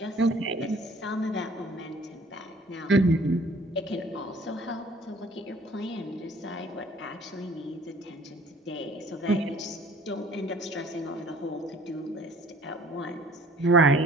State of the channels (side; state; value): both; normal; correlation 0.53